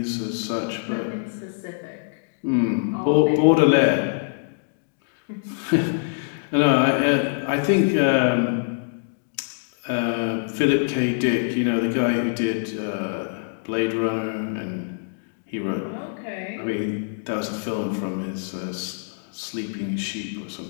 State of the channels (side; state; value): right; silent; digital silence